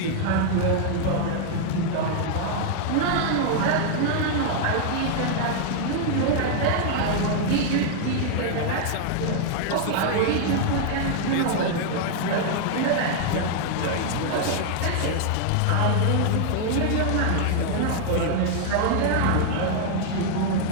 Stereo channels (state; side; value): different; both; correlation 0.00